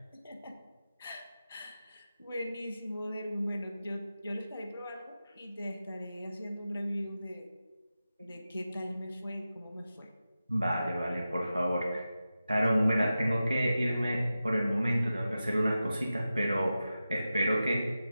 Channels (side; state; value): both; inverted; correlation -0.93